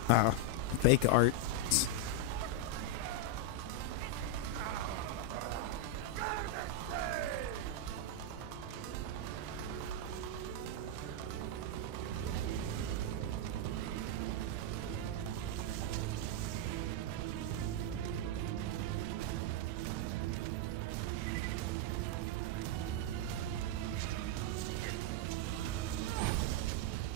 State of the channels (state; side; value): different; both; correlation 0.00